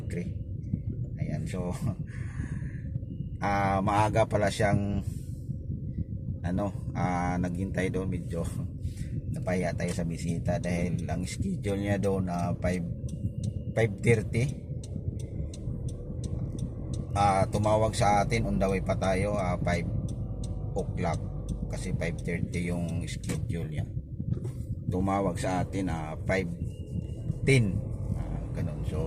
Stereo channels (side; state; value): both; identical; correlation 1.00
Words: 3. Ayan, so maaga pala siyang naghintay doon, medyo napaya tayo sa bisita dahil ang schedule niya doon 5:30. Tumawag sa atin, on the way pa tayo 5 o'clock kasi 5:30 yung schedule niya. Tumawag sa atin 5:10, ganun.